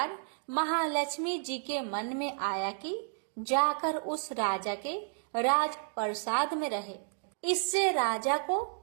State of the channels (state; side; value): silent; left; digital silence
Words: महालक्ष्मी जी के मन में आया कि जाकर उस राजा के राजप्रसाद में रहे। इससे राजा को